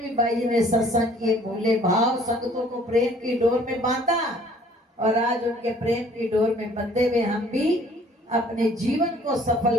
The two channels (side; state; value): both; normal; correlation 0.56